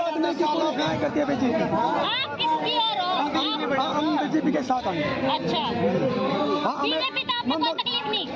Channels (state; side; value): identical; both; correlation 1.00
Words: की पूरी सुनाई करती है बीजेपी। आप किसकी ओर हो? हम बीजेपी के साथ आएंगे। अच्छा, बीजेपी तो आपको कोई तकलीफ